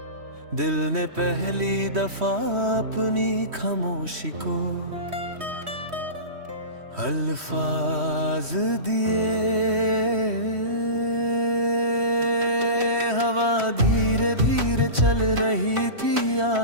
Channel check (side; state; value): left; late; 3.1 ms